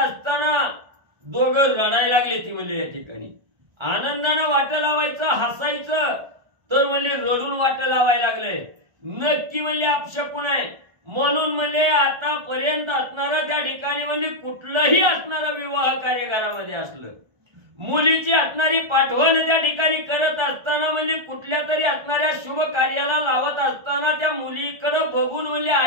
दोघं रडायला लागले. ती म्हणजे या ठिकाणी आनंदानं वाट लावायचं हसायचं तर म्हणजे रडून वाट लावायला लागले. नक्की म्हणजे अपशकुन आहे. म्हणून म्हणजे आतापर्यंत असणारं त्या ठिकाणी म्हणजे कुठलंही असणारं विवाह कार्यक्रमामध्ये असलं मुलीची असणारी पाठवण त्या ठिकाणी करत असताना म्हणजे कुठल्या तरी असणाऱ्या शुभ कार्याला लावत असताना त्या मुलीकडे बघून म्हणजे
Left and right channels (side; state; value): left; late; 1.3 ms